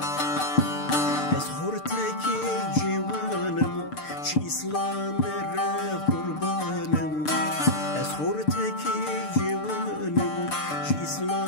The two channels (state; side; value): late; right; 6.7 ms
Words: أسخورتك جوانم شي إسلام قربانم أسخورتك جوانم شي